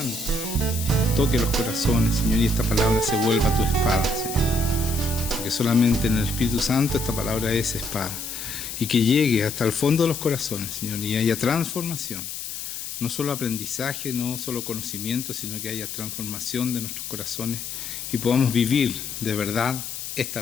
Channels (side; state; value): left; noise; hiss, 7 dB below the sound